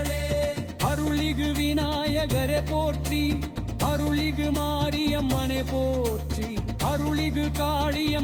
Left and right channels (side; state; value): both; identical; correlation 1.00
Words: அருளிகு விநாயகரே போற்றி அருளிகு மாரியம்மனே போற்றி அருளிகு